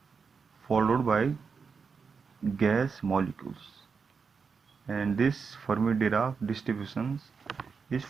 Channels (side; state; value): left; quieter; 5.5 dB